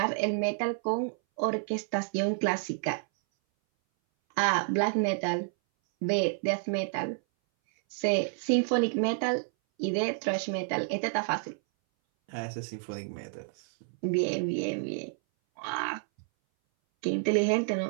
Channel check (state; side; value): silent; left; 58 dB below the other